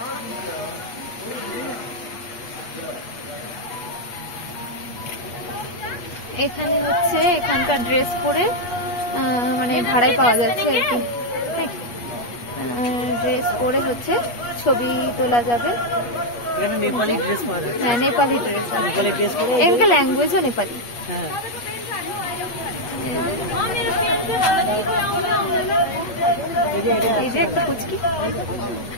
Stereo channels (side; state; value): right; late; 8.3 ms